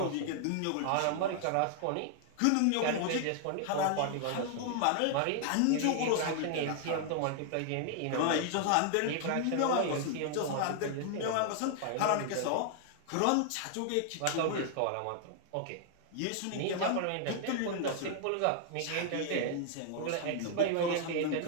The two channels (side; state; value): both; different; correlation 0.00